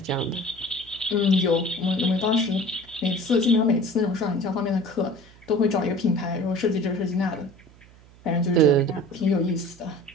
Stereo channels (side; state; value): right; noise; hum, 25 dB below the sound